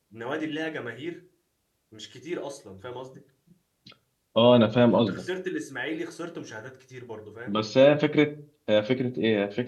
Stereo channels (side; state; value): both; identical; correlation 1.00